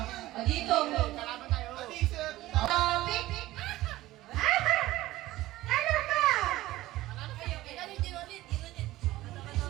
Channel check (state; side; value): quieter; left; 16.7 dB